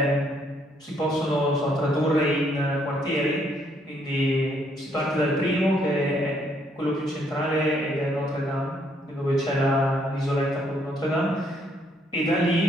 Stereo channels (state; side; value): normal; both; correlation 0.70